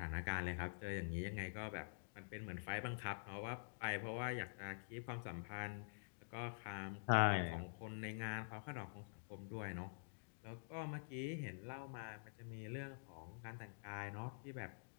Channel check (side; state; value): right; silent; digital silence